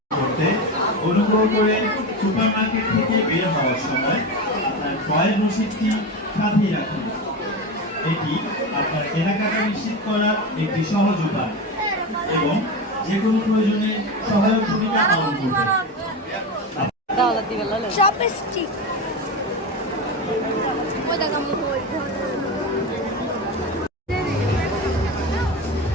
করতে অনুগ্রহ করে সুপারমার্কেট থেকে বের হওয়ার সময় আপনার ক্রয়ের রসিদটি সাথেই রাখুন। এটি আপনার কেনাকাটা নিশ্চিত করার একটি সহজ উপায় এবং যে কোনো প্রয়োজনে সহায়ক ভূমিকা পালন করবে।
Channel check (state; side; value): normal; both; correlation 0.21